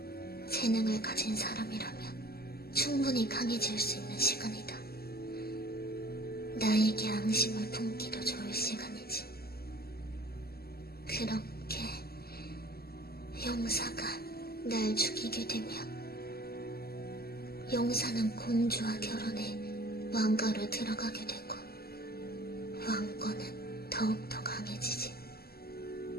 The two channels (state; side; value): late; right; 0.45 ms